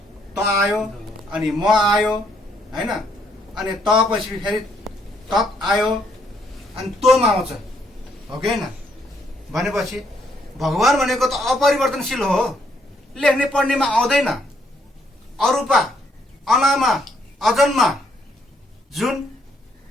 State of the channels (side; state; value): both; normal; correlation 0.71